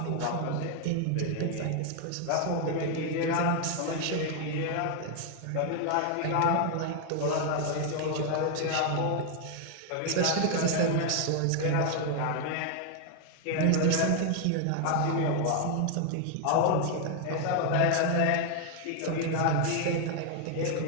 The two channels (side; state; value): both; different; correlation 0.00